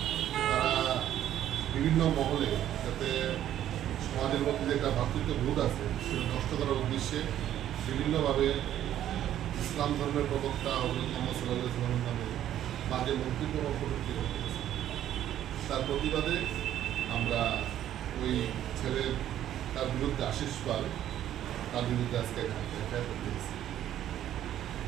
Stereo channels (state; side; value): quieter; left; 11.6 dB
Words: তারা বিভিন্ন মহলে যাতে সমাজের মধ্যে যে একটা ভ্রাতৃত্ববোধ আছে সেটা নষ্ট করার উদ্দেশ্যে বিভিন্নভাবে ইসলাম ধর্মের প্রবক্তা হজরত মুহাম্মদ সাল্লাল্লাহু আলাইহি ওয়াসাল্লামের নামে বাজে মন্তব্য এবং কটূক্তি করতেছে। তার প্রতিবাদে আমরা ওই ছেলের তার বিরুদ্ধে আশিস পাল তার বিরুদ্ধে আজকে এফআইআর করতে গেছি।